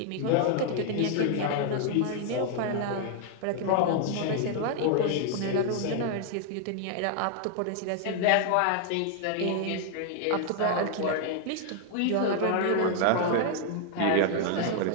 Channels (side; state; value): both; different; correlation 0.00